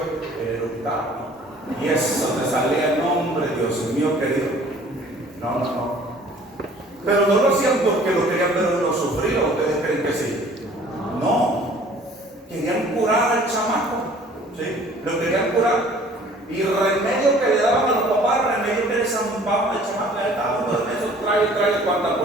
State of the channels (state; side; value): normal; both; correlation 0.52